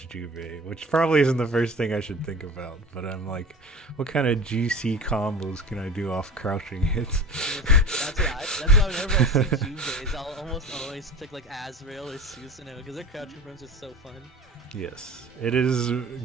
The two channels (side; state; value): both; normal; correlation 0.35